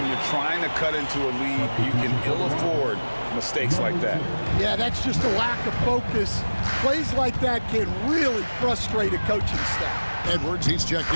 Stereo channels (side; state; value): both; inverted; correlation -1.00